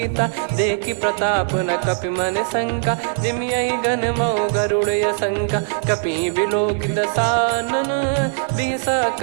देखी प्रताप न कपि मन शंका जिम यही गन मऊ गरुड़ शंका कपि बिलोक दसानन बिहसा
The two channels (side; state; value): left; silent; digital silence